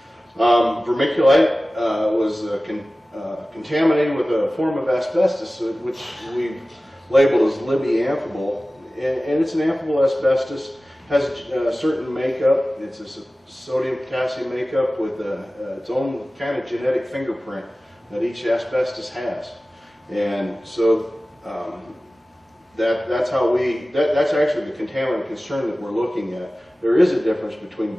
Vermiculite was contaminated with a form of asbestos, which we've labeled as Libby amphibole, and it's an amphibole asbestos, has a certain makeup. It's a sodium potassium makeup with its own kind of genetic fingerprint that each asbestos has, and so that's actually the contaminant concern that we're looking at. There is a difference between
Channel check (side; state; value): both; normal; correlation 0.96